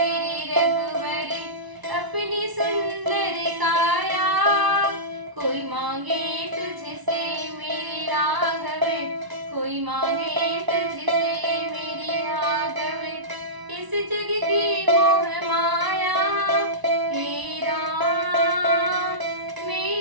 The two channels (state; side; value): late; left; 1.0 ms